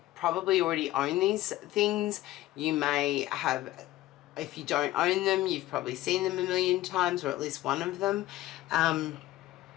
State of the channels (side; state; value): right; quieter; 16.0 dB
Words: probably already own these things. You may have, if you don't own them, you've probably seen them a million times, or at least one of them.